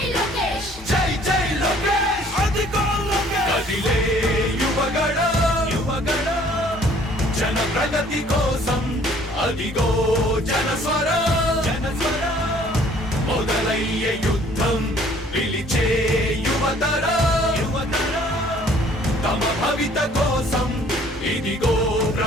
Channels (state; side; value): normal; both; correlation 0.57